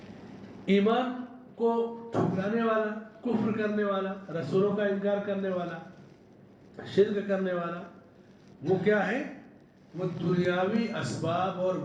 ایمان کو ٹھکرانے والا، کفر کرنے والا، رسولوں کا انکار کرنے والا، شرک کرنے والا، وہ کیا ہے؟ وہ دنیاوی اسباب اور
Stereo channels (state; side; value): identical; both; correlation 1.00